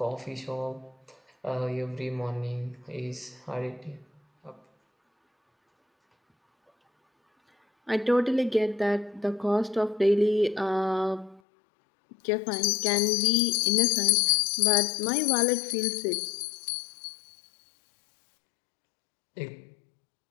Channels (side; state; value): right; drops out; at 11.4 s